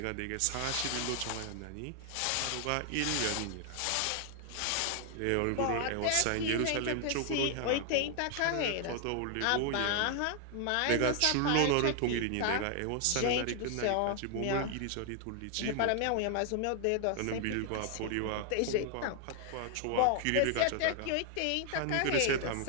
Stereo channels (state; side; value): different; both; correlation 0.00